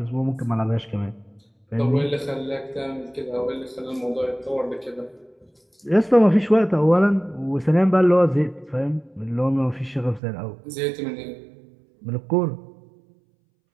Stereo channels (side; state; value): left; drops out; at 10.2 s